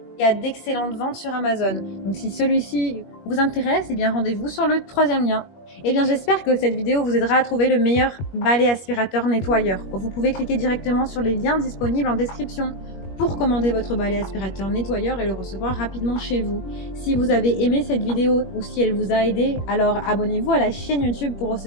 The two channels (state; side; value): late; right; 21 ms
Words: Il y a d'excellentes ventes sur Amazon. Donc si celui-ci vous intéresse, eh bien rendez-vous sur le 3e lien. Eh bien j'espère que cette vidéo vous aidera à trouver le meilleur balai aspirateur nettoyeur. Vous pouvez cliquer directement sur les liens disponibles en description pour commander votre balai aspirateur nettoyeur et le recevoir rapidement chez vous. Si vous avez aimé cette vidéo ou si elle vous a aidé, alors abonnez-vous à la chaîne YouTube pour